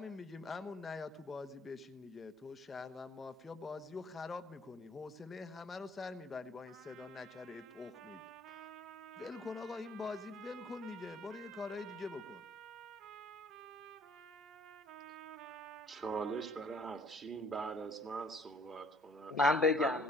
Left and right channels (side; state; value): both; normal; correlation 0.57